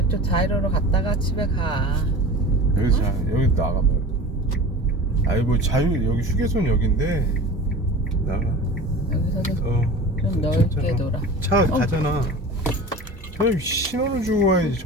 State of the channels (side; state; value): both; normal; correlation 0.36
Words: 자이로로 갔다가 집에 가. 여기 나가봐. 아니 뭐 여기 휴게소는 여긴데 나가. 여기서도 좀 좀 넓게 돌아. 차 가잖아. 저 신호를 주고 와야지